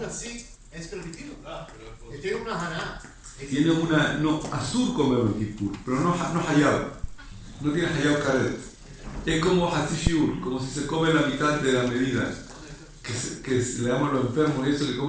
así es permitido. Él tiene una haná. Tiene una, no, azul comer en Kippur, pero no hayab. No tiene hayab karet. Es como hasishiur, como si se come la mitad de la medida. Que le damos a los enfermos y eso, que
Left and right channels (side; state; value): both; identical; correlation 1.00